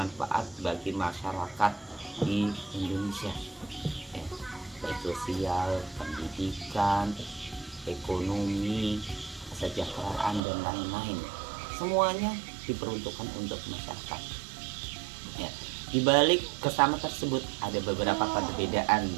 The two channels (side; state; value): left; drops out; at 10.4 s